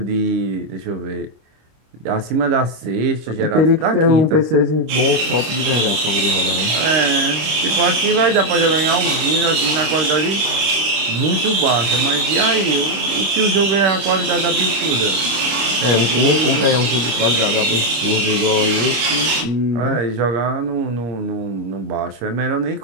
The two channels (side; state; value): left; late; 26 ms